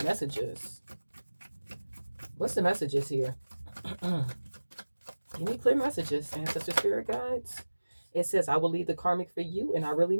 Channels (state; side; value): inverted; both; correlation -1.00